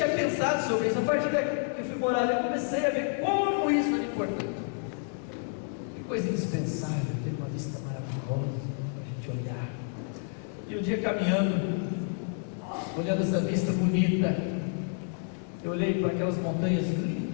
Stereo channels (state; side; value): silent; right; 58 dB below the other